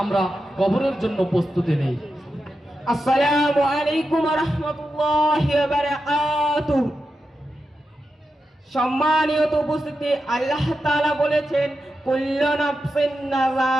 কবরের জন্য প্রস্তুতি নেই। আসসালামু আলাইকুম ওয়া রাহমাতুল্লাহি ওয়া বারাকাতুহু। সম্মানিত উপস্থিতি, আল্লাহ তাআলা বলেছেন কুল্লু নাফসিন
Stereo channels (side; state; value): both; normal; correlation 0.89